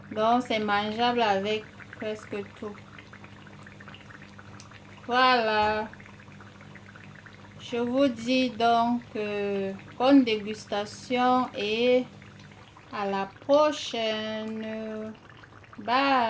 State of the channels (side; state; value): both; identical; correlation 1.00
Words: Donc, c'est mangeable avec presque tout. Voilà. Je vous dis donc bonne dégustation et à la prochaine.